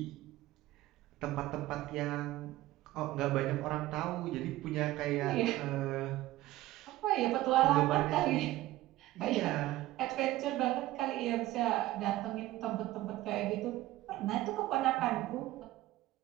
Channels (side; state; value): left; quieter; 16.3 dB